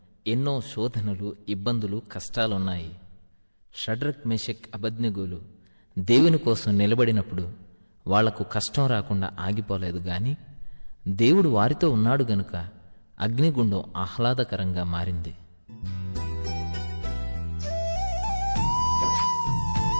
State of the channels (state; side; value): inverted; both; correlation -1.00